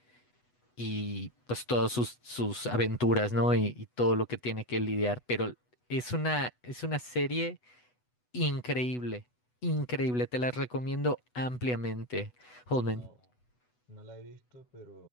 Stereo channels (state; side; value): late; right; 8.1 ms